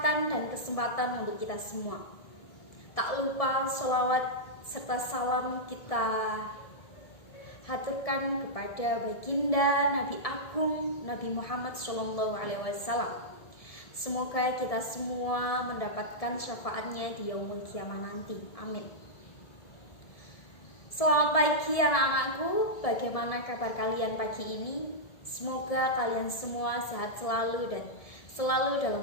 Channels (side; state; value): right; late; 1.7 ms